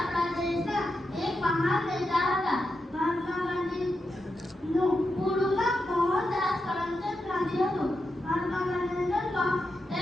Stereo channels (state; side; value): normal; both; correlation 0.87